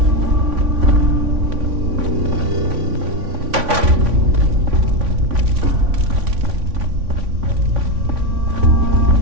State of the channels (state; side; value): late; left; 3.5 ms